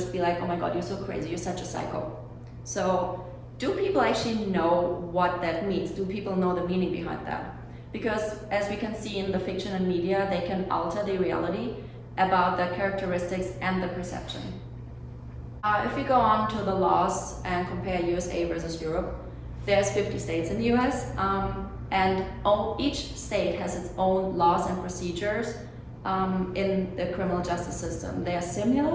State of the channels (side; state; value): both; identical; correlation 1.00